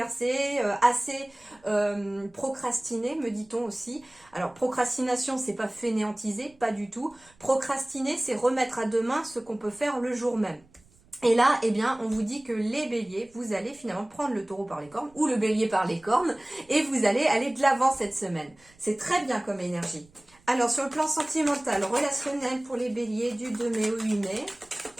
assez procrastiné, me dit-on aussi. Alors, procrastination, c'est pas fainéantiser, pas du tout. Procrastiner, c'est remettre à demain ce qu'on peut faire le jour même. Et là, on vous dit que les béliers, vous allez finalement prendre le taureau par les cornes, ou le bélier par les cornes, et vous allez aller de l'avant cette semaine. C'est très bien comme énergie. Alors, sur le plan sentimental, relationnel pour les béliers du 2 mai au 8 mai,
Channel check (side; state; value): right; noise; rumble, 30 dB below the sound